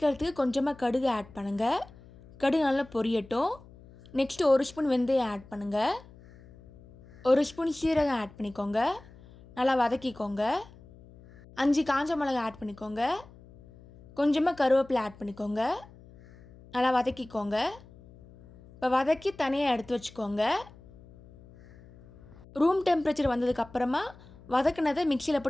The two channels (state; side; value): noise; left; hum, 22 dB below the sound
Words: கொஞ்சமாக கடுகு ஆட் பண்ணுங்கள். கடுகு நல்லா பொரியட்டும். நெக்ஸ்ட்டு 1 ஸ்பூன் வெந்தயம் ஆட் பண்ணுங்கள். 1 ஸ்பூன் சீரகம் ஆட் பண்ணிக்கோங்க. நல்லா வதக்கிக்கோங்க. 5 காஞ்ச மிளகாய் ஆட் பண்ணிக்கோங்க. கொஞ்சமாக கருவேப்பிலை ஆட் பண்ணிக்கோங்க. நல்லா வதக்கிக்கோங்க. இப்போ வதக்கி தனியாக எடுத்து வச்சுக்கோங்க. ரூம் டெம்பரேச்சர் வந்ததுக்கப்புறமா வதக்கினதை மிக்சியில்